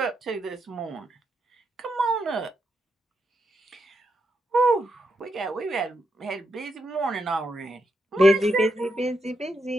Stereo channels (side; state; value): both; normal; correlation 0.82